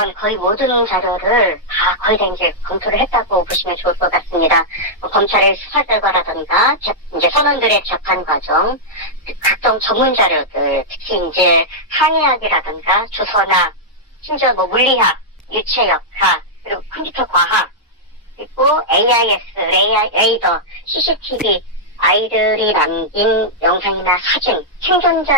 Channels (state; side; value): normal; both; correlation -0.08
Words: 거의 모든 자료를 거의 다 이제 검토를 했다고 보시면 좋을 것 같습니다. 검찰의 수사 결과라든가 이제 선원들의 재판 과정, 각종 전문 자료들, 특히 이제 항해학이라든가 주선학, 심지어 물리학, 유체역학, 그리고 컴퓨터 과학, 그리고 AIS, 레이더, CCTV, 아이들이 남긴 영상이나 사진,